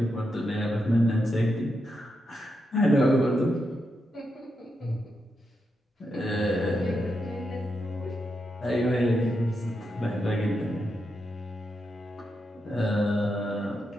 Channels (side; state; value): both; normal; correlation 0.85